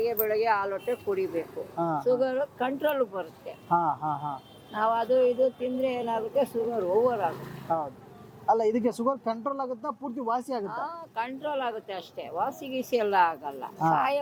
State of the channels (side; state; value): both; identical; correlation 1.00